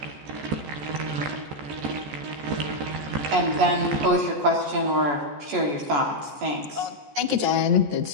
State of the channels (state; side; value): late; left; 14 ms